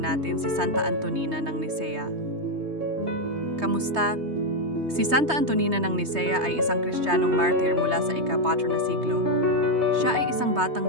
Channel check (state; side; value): late; left; 3.2 ms